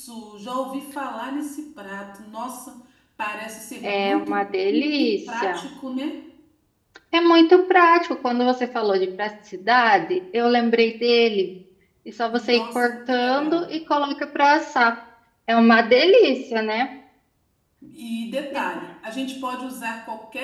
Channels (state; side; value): identical; both; correlation 1.00